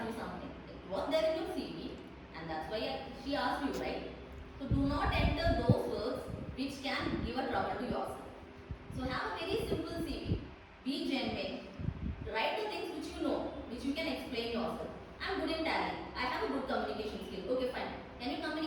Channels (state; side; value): identical; both; correlation 1.00